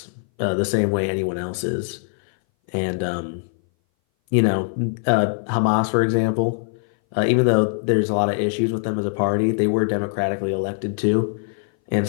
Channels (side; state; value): right; silent; 60 dB below the other